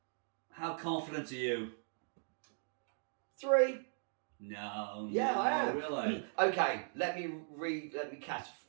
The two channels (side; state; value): left; silent; digital silence